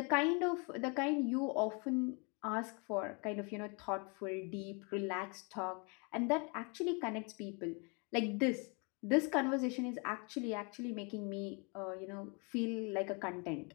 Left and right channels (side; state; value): right; quieter; 33.3 dB